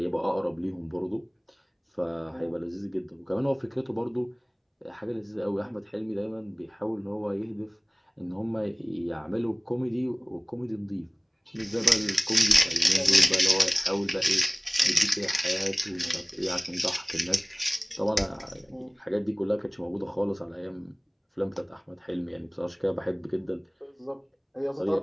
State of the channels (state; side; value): identical; both; correlation 1.00